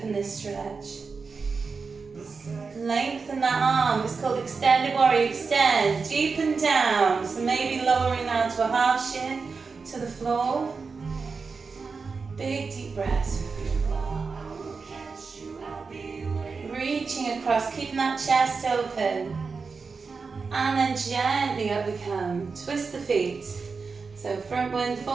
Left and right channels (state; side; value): quieter; left; 4.8 dB